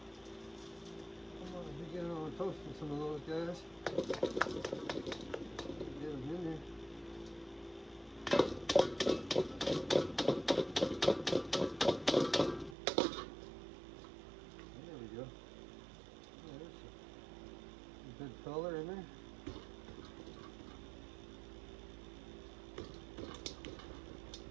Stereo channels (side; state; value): left; drops out; at 12.8 s